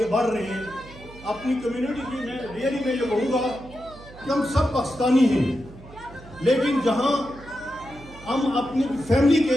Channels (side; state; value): right; noise; hum, 19 dB below the sound